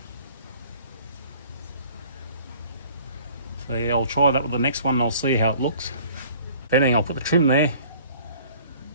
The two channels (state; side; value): inverted; both; correlation -0.52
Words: So yeah, I'll try that with the next one and I'll see how it looks. If anything, I'll put the trim there